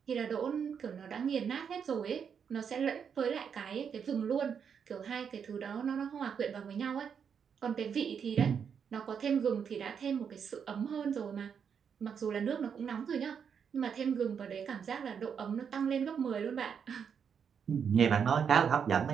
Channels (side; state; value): left; quieter; 7.1 dB